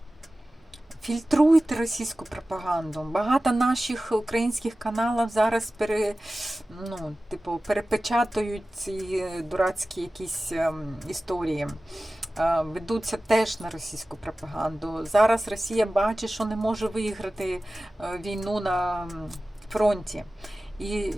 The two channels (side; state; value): both; normal; correlation 0.96